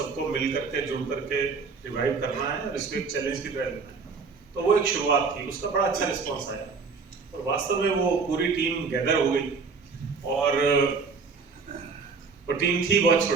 मिल करके, जुड़ करके रिवाइव करना है और इसको एक चैलेंज की तरह लेना है। तो वो एक शुरुआत थी, उसका बड़ा अच्छा रिस्पॉन्स आया, और वास्तव में वो पूरी टीम गैदर हो गई, और वो टीम थी बहुत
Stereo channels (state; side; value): quieter; left; 4.8 dB